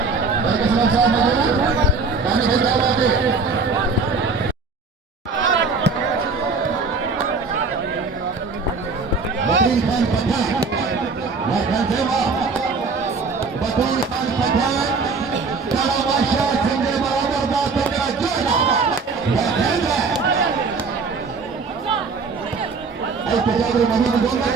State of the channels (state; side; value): quieter; left; 4.4 dB